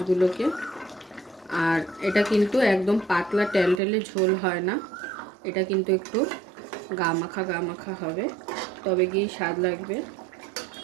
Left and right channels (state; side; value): drops out; left; at 3.8 s